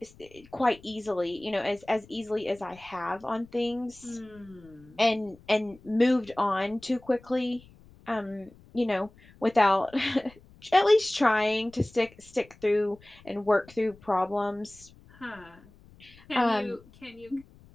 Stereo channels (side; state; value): left; noise; rumble, 25 dB below the sound